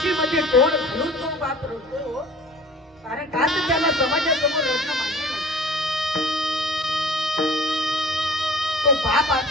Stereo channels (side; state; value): both; normal; correlation 0.46